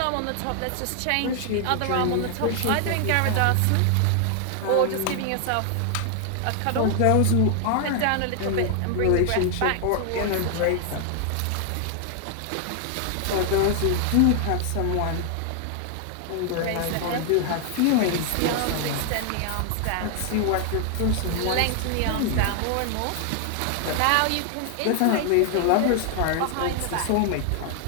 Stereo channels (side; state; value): both; different; correlation 0.00